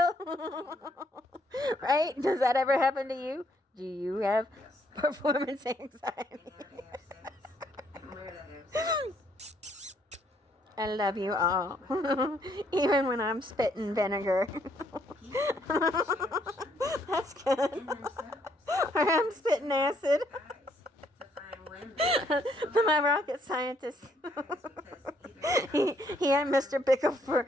Right? Does that ever happen to you? Do you have performance anxiety? I love you all. Even when I'm spitting vinegar. That's good. Or I'm spitting acid. My rocket scientist. He had Mr. Bickle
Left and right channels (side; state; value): both; normal; correlation 0.69